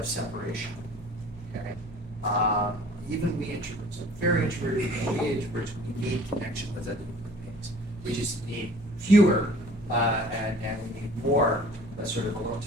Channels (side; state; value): both; normal; correlation 0.49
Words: separation, okay? Even we introverts, very introverted, we introverts, we need connection with other human beings. We just need fewer, and we need more sort of alone